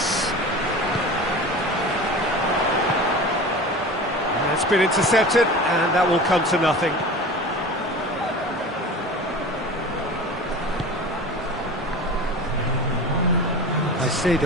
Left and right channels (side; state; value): both; normal; correlation 0.35